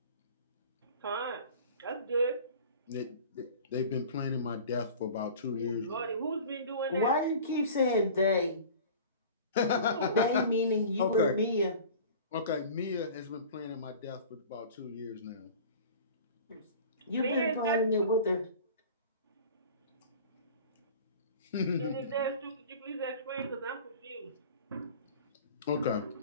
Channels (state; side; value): inverted; both; correlation -0.41